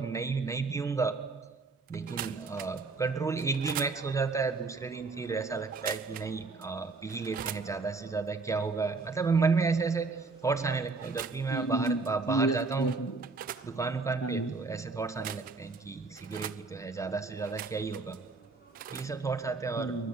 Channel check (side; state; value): left; quieter; 4.0 dB